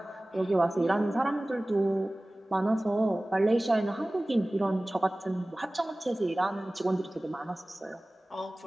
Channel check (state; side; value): normal; both; correlation 0.98